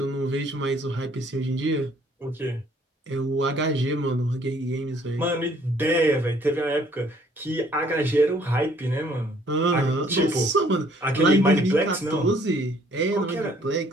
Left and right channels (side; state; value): both; normal; correlation 0.62